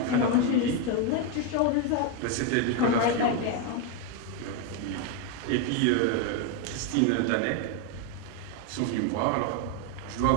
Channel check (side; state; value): both; different; correlation 0.02